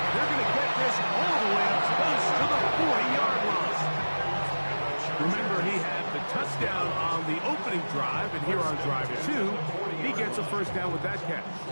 They're going to get this all the way up close to the 40-yard line. Remember, he had the touchdown on the opening drive, and here on drive 2, he gets a first down with that catch.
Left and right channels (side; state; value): both; inverted; correlation -1.00